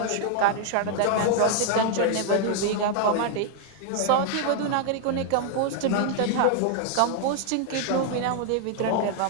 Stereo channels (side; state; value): both; different; correlation 0.00